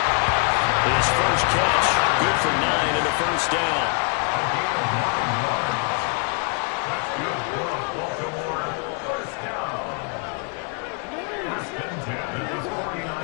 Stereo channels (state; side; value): quieter; right; 36.3 dB